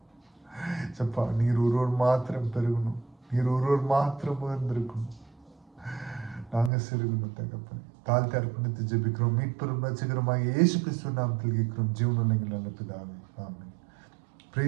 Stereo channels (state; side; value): drops out; left; at 6.7 s